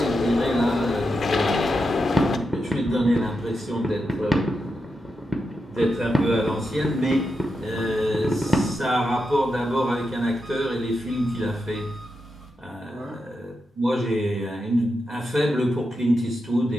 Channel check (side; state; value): both; normal; correlation 0.87